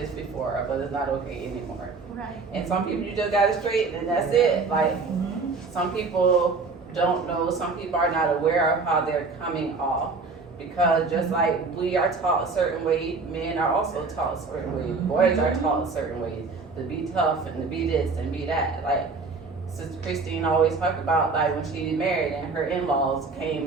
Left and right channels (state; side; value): quieter; left; 4.2 dB